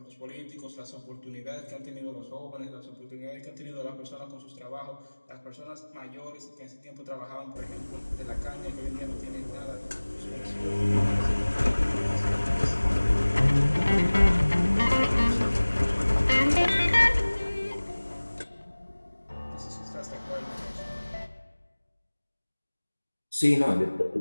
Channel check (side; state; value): both; inverted; correlation -1.00